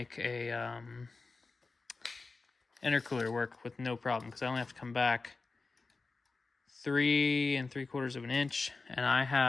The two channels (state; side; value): quieter; right; 3.9 dB